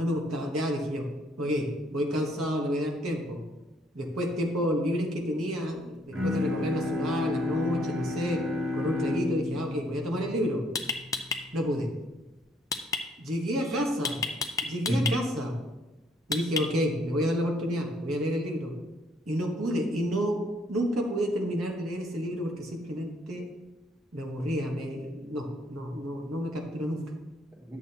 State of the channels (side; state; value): both; normal; correlation 0.66